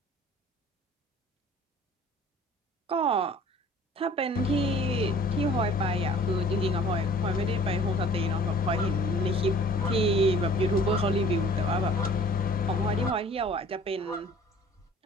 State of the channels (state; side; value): normal; both; correlation 0.50